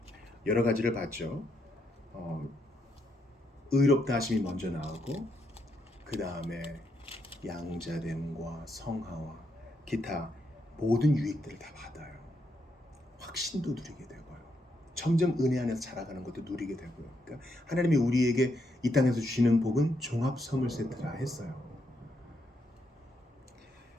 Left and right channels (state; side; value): normal; both; correlation 0.78